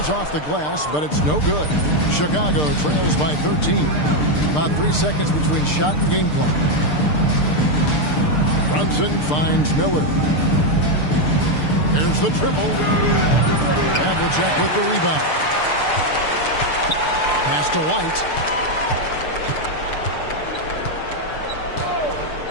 off the glass, but it's no good. Chicago trails by 13. About 3 seconds between shot and game clock. Brunson finds Miller. There's the triple. Havlicek with the rebound. Pass to White.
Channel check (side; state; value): right; late; 6.7 ms